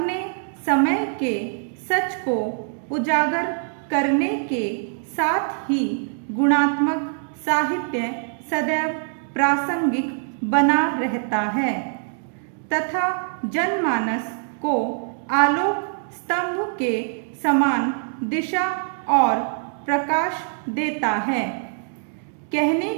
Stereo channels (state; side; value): silent; left; digital silence